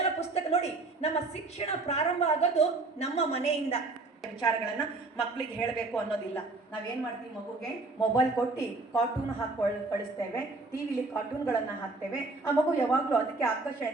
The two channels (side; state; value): left; quieter; 3.5 dB